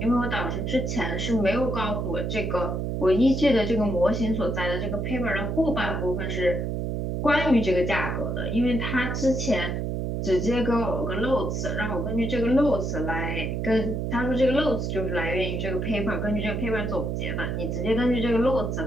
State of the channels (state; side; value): noise; right; hum, 1 dB below the sound